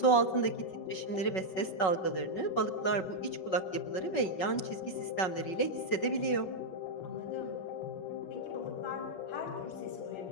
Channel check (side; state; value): right; late; 5.4 ms